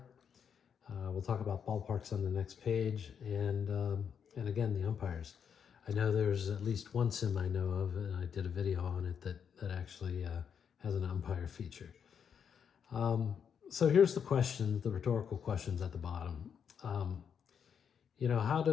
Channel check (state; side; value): quieter; right; 7.4 dB